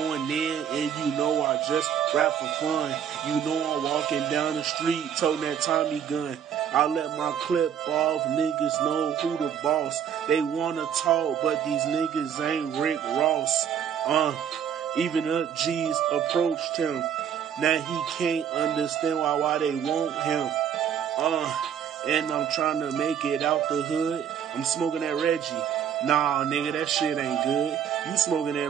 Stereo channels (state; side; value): quieter; left; 8.5 dB